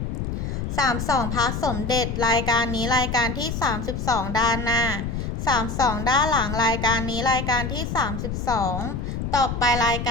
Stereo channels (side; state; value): left; noise; rumble, 4 dB below the sound